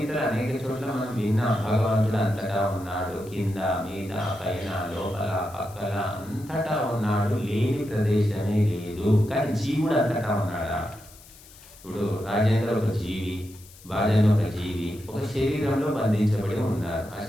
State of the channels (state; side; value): noise; left; hiss, 22 dB below the sound